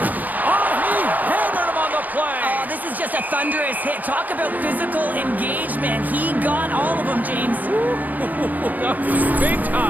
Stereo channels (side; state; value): left; late; 0.082 ms